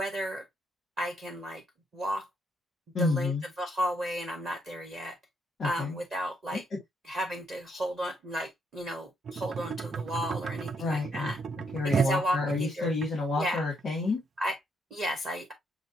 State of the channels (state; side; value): normal; both; correlation 0.74